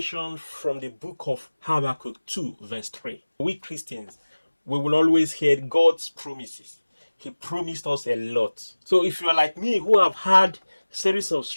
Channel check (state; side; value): inverted; both; correlation -1.00